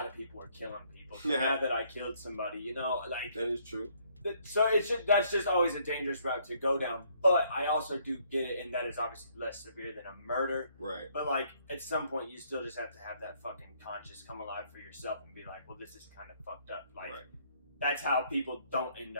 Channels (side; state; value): both; inverted; correlation -0.67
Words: of people were killing people. So now that I killed somebody, you know, like that is true. So that's just always a dangerous route to go down. But I also do get it, and that is obviously less severe than a murder. Right. But like, at some point, you still just have to have that fucking conscience come alive for yourself and be like, well, this is kind of fucked up. Like. Right. That's how people don't end